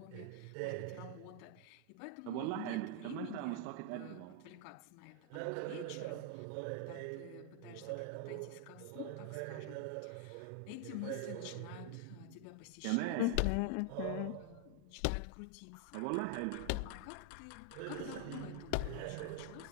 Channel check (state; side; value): different; both; correlation 0.00